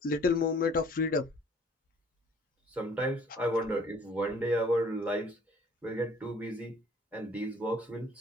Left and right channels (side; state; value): both; normal; correlation 0.55